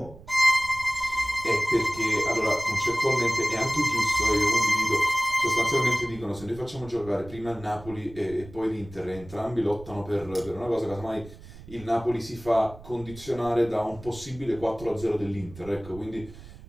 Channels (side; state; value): right; noise; rumble, 17 dB below the sound